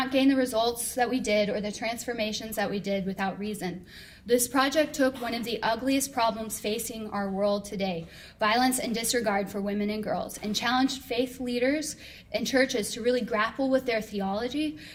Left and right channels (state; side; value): identical; both; correlation 1.00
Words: gain the results that we did or the transformations that we did without reason. This project took one of the ugliest problems facing our world today, violence and disregard for women and girls, and challenged faith leaders and churches to really grapple with their theology,